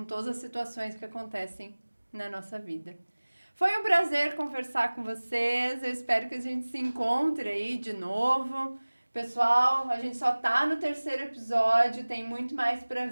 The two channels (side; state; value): both; inverted; correlation -1.00